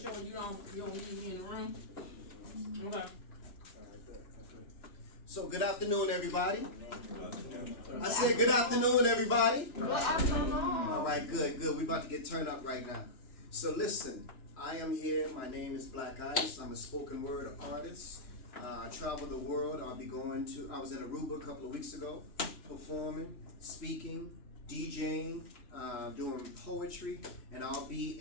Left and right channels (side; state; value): right; late; 2.9 ms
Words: you don't leave me in the room. Okay. So good afternoon, everybody. I said good afternoon, everybody. Good afternoon. All right, good. We're about to get turned up right now. So listen, I am here. My name is BLAQ ICE. I'm a spoken word artist. I travel the world. I was in Aruba a couple of weeks ago, performing, speaking, DJing, doing poetry, and I'll be